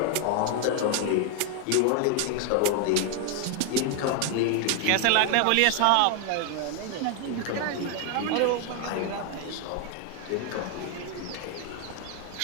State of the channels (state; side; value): different; both; correlation 0.00